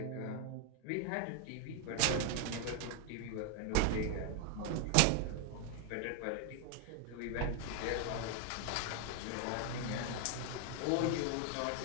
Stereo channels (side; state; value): both; different; correlation 0.00